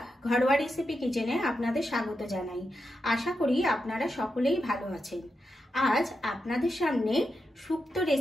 ঘরোয়া রেসিপি কিচেনে আপনাদের স্বাগত জানাই। আশা করি আপনারা সকলেই ভালো আছেন। আজ আপনাদের সামনে শুক্তো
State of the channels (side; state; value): both; normal; correlation 0.87